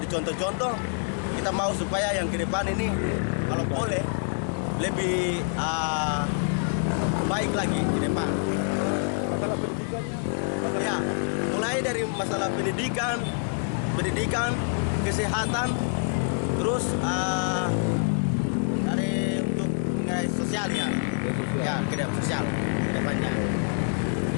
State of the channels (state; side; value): silent; right; 61 dB below the other